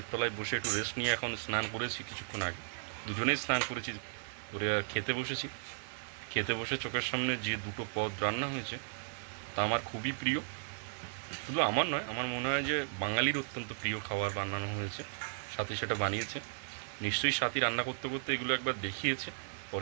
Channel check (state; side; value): silent; left; digital silence